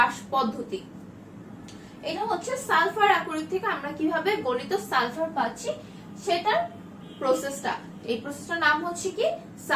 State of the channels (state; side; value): identical; both; correlation 1.00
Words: পদ্ধতি। এটা হচ্ছে সালফার আকরিক থেকে আমরা কিভাবে গলিত সালফার পাচ্ছি সেটার প্রসেসটা। এই প্রসেসটার নাম হচ্ছে কি,